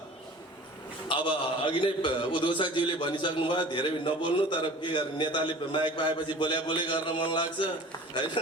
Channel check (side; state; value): both; normal; correlation 0.42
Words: अब अघि नै उद्घोषकज्यूले भनिसक्नु भयो, धेरै नबोल्नु, तर के गर्ने, नेताले माइक पाएपछि बोले गर्न मन लाग्छ होइन,